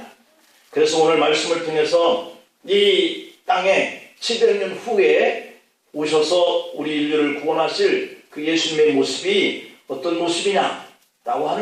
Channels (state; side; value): identical; both; correlation 1.00